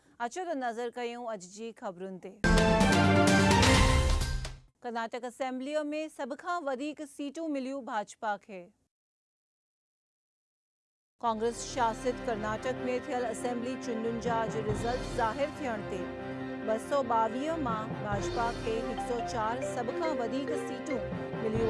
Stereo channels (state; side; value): identical; both; correlation 1.00